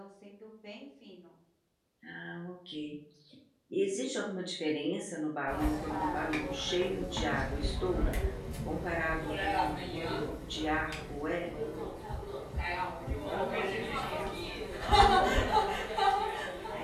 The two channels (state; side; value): identical; both; correlation 1.00